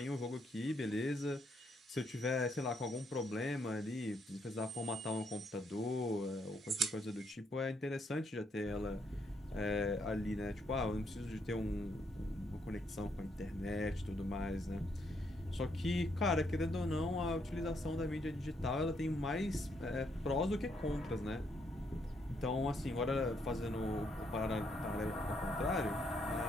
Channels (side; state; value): both; normal; correlation 0.74